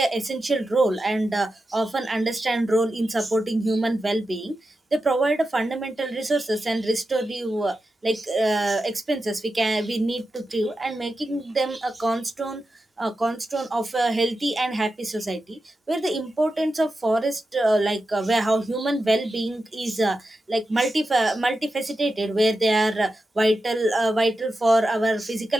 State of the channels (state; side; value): normal; both; correlation 0.90